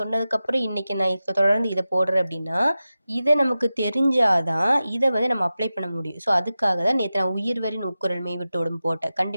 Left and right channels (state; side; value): inverted; both; correlation -0.94